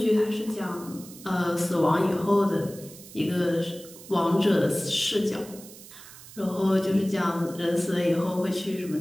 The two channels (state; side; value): noise; right; hiss, 18 dB below the sound